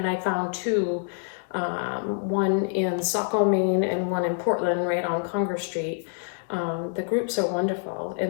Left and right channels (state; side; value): silent; right; digital silence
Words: I found two, one in Saco, Maine and one in Portland right on Congress Street. The groups are wonderful